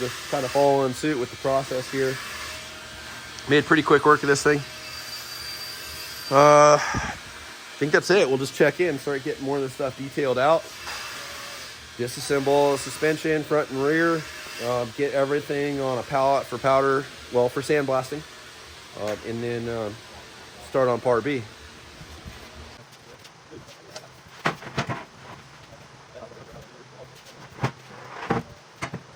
kind of following suit with the process here. Made pretty quick work of this thing. I think that's it. We'll just check in, start getting more of this stuff detailed out. Disassemble suspension, front and rear. Get everything on a pallet for powder, well, for sandblasting. And then start on part B.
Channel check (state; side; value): identical; both; correlation 1.00